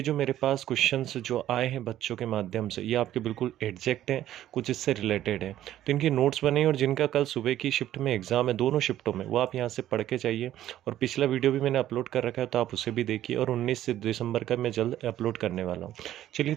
जो मेरे पास क्वेश्चंस जो आए हैं बच्चों के माध्यम से, ये आपके बिल्कुल एग्जैक्ट हैं, कुछ इससे रिलेटेड है। तो इनके नोट्स बने हैं और जिनका कल सुबह की शिफ्ट में एग्ज़ाम है, दोनों शिफ्टों में, वो आप यहाँ से पढ़ के जाइए। और पिछला वीडियो भी मैंने अपलोड कर रखा है, तो आप उसे भी देखिए। और 19 दिसंबर का मैं जल्द अपलोड करने वाला हूँ। चलिए,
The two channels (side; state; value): left; quieter; 12.7 dB